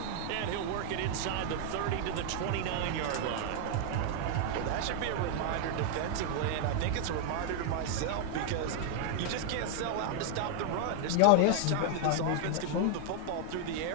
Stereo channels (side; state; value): both; different; correlation 0.00